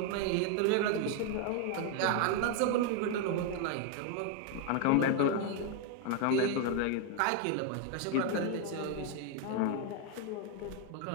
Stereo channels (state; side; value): different; both; correlation 0.01